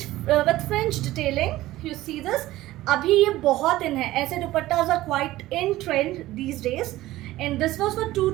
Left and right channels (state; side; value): quieter; left; 16.3 dB